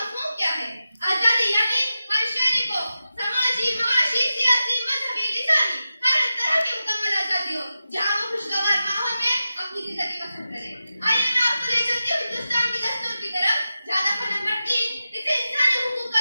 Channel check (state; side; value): inverted; both; correlation -0.92